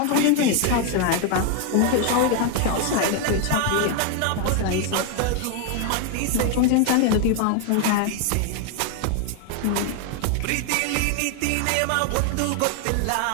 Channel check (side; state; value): both; different; correlation 0.01